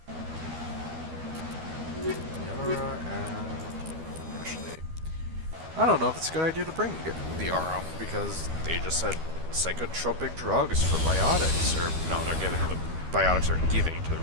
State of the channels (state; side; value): late; left; 12 ms